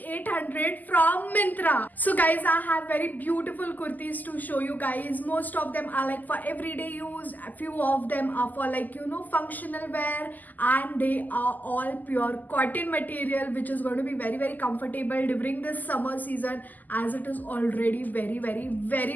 from Myntra. So guys, I have very beautiful kurtis to show you guys. Most of them are like for everyday use, a few of them are for functional wear, and they are all pure cotton material, which is going to be very comfortable during this summer season as it is already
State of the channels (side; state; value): right; late; 0.083 ms